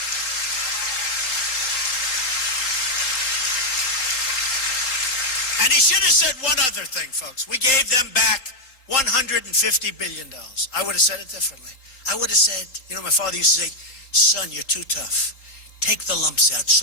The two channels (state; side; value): late; right; 3.9 ms